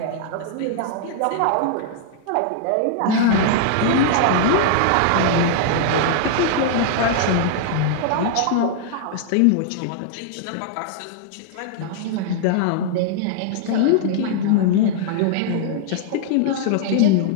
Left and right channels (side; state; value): both; different; correlation -0.01